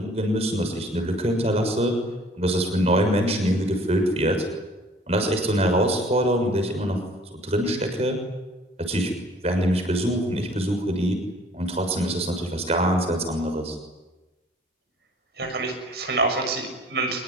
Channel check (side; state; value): both; normal; correlation 0.53